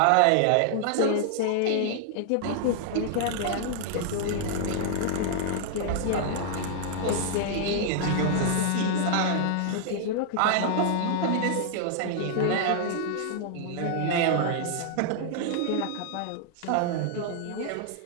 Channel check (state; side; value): different; both; correlation -0.01